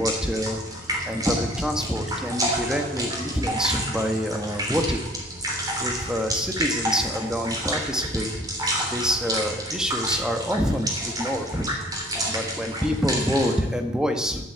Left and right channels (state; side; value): normal; both; correlation 0.55